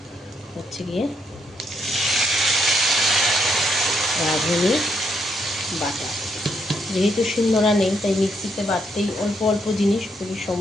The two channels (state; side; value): normal; both; correlation 0.75